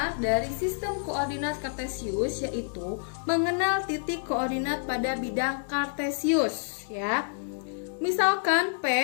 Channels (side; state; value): right; silent; digital silence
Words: dari sistem koordinat kartesius yaitu mengenal titik koordinat pada bidang kartesius ya. Misalkan